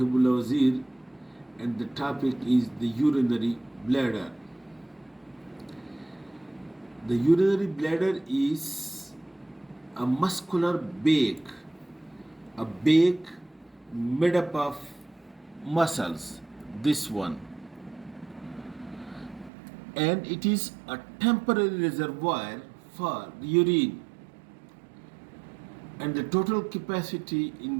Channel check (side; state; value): left; drops out; at 19.5 s